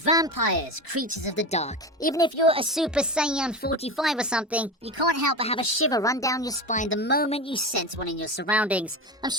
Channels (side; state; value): both; normal; correlation 0.24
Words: creatures of the dark. Even if you're a Super Saiyan 45 or something, you can't help but have a shiver run down your spine the moment you sense one in your surroundings. I'm